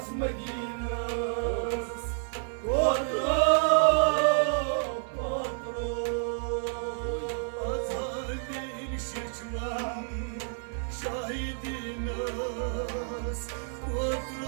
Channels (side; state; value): left; silent; 58 dB below the other